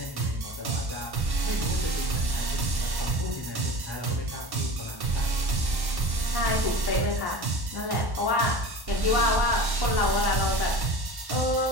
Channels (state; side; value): late; left; 1.1 ms